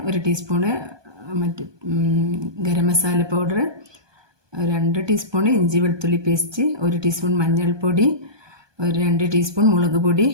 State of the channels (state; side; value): late; left; 1.2 ms